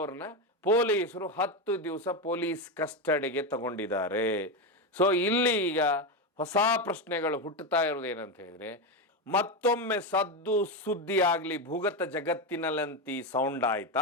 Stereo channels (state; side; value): normal; both; correlation 0.13